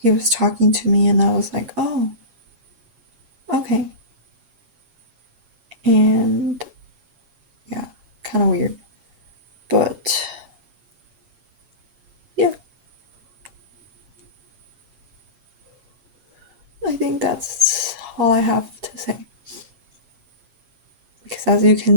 he was talking to me, and I was like, oh, okay. And yeah, kind of weird. But yeah, I think that's all I have to say. Because as you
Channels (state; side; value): late; left; 7.3 ms